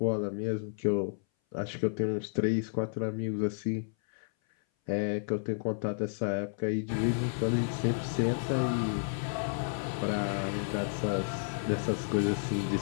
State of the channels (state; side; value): silent; right; 57 dB below the other